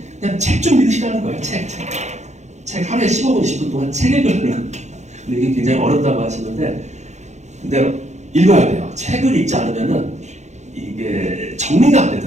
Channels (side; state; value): left; late; 0.33 ms